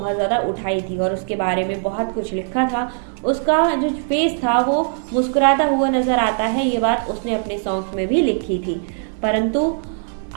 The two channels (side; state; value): left; silent; 66 dB below the other